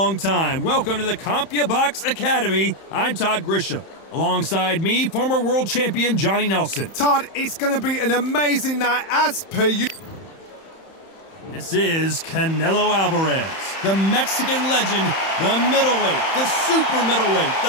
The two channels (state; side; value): late; right; 31 ms